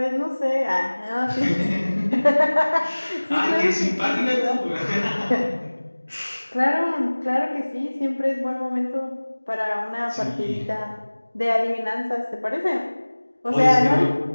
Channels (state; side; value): inverted; both; correlation -1.00